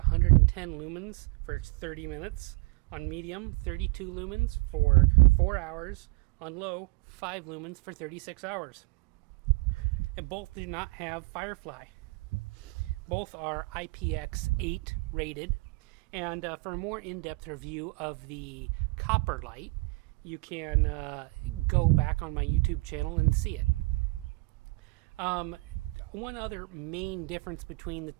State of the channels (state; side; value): quieter; left; 24.7 dB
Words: lumens for 30 minutes. On medium, 32 lumens for 4 hours. On low, 5 lumens for 36 hours. And both do not have Firefly. Both are IPX8 rated. And for a more in-depth review of the copper light, you can go back on my YouTube channel and see it. One other main difference between the